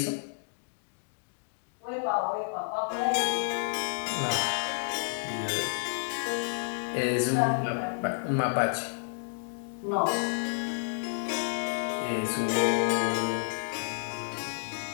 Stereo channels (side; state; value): right; silent; digital silence